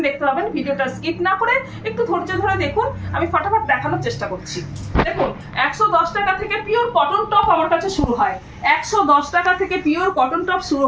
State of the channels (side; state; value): both; identical; correlation 1.00